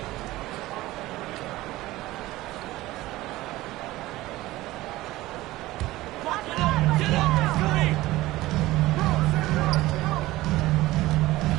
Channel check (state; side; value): quieter; left; 17.7 dB